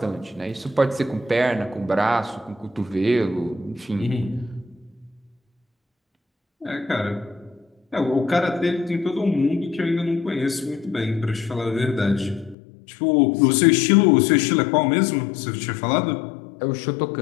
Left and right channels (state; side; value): drops out; right; at 12.6 s